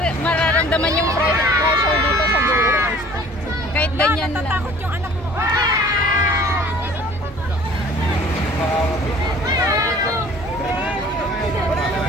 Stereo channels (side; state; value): both; normal; correlation 0.50